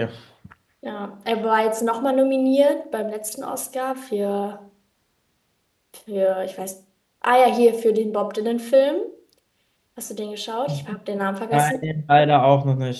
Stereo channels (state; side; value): identical; both; correlation 1.00